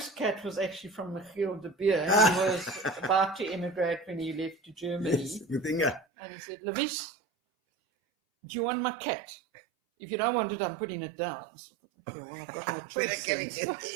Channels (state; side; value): drops out; left; at 6.1 s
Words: cat was actually from Michiel de Beer. He was about to emigrate when he left to Germany. Yes, with Inga. And he said, Louise, do you want my cat? If you don't want it, I'm putting it down. So, okay, well, I've got no choice.